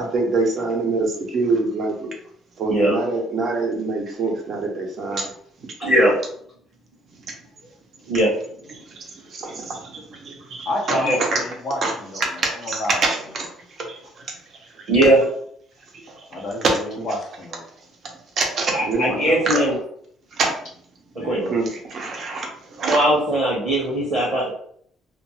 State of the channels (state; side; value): normal; both; correlation 0.60